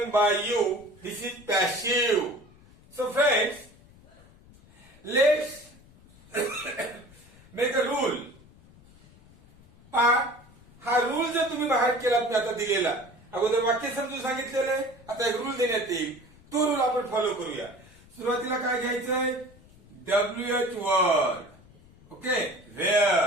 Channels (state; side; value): noise; left; rumble, 25 dB below the sound